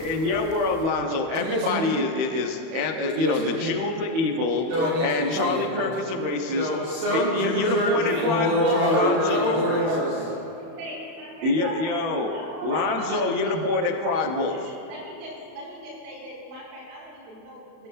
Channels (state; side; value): late; left; 31 ms